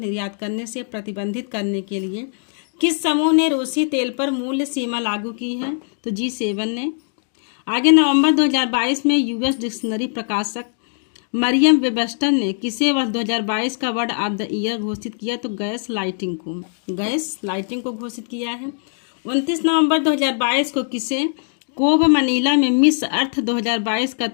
करने से प्रतिबंधित करने के लिए किस समूह ने रूसी तेल पर मूल्य सीमा लागू की है? तो G7 ने। आगे नवंबर 2022 में यूएस डिक्शनरी प्रकाशक मरियम वेबस्टर ने किसे वर्ष 2022 का वर्ड ऑफ द ईयर घोषित किया? तो गैस लाइटिंग को घोषित किया है। 29 नवंबर 2022 को किसे कोब मनीला में मिस अर्थ 2022 का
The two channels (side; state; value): right; silent; 62 dB below the other